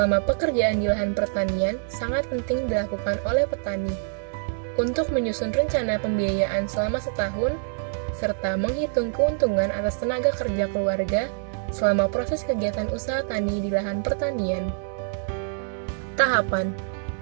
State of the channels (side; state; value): left; silent; 61 dB below the other